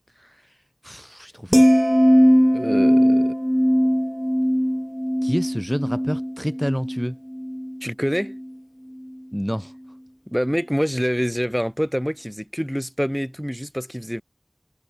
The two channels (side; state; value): both; identical; correlation 1.00